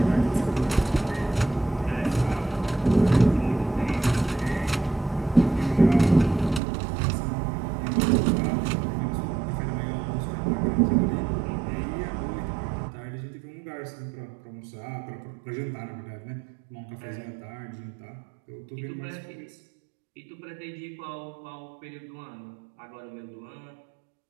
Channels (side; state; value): left; drops out; at 6.6 s